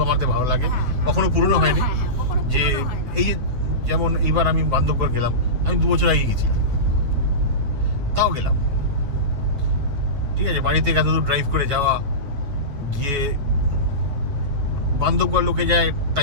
আমাদের ভালো লাগে, কখনো পুরনো হয়নি। যে এই যে যেমন এইবার আমি বান্ধবগড় গেলাম, আমি 2 বছর আগে গেছিলাম, তাও গেলাম, ঠিক আছে। বাড়ি থেকে এতদূর ড্রাইভ করে যাওয়া, গিয়ে বান্ধবগড় লোকে যায়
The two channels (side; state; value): left; late; 9.0 ms